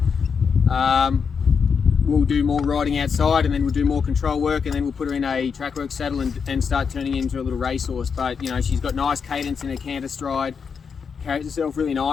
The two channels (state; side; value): quieter; right; 6.1 dB